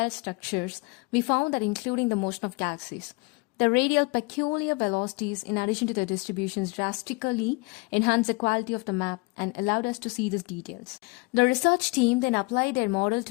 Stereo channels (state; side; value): quieter; right; 28.4 dB